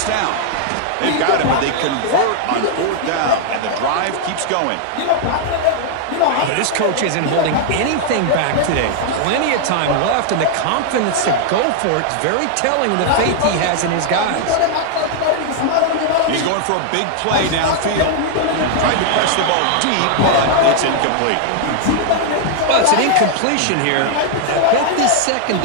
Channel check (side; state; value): both; different; correlation -0.01